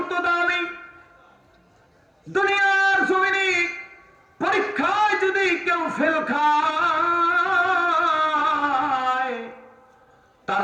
দামি। দুনিয়ার জমিনে পরীক্ষায় যদি কেউ ফেল খায়, তার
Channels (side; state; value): both; identical; correlation 1.00